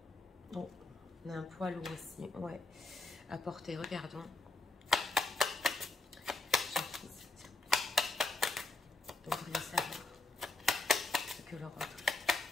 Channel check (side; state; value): right; quieter; 3.4 dB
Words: Bon, on a un poids lourd aussi, ouais. À porter, regardons. Donc, vous voulez savoir ce que l'Europe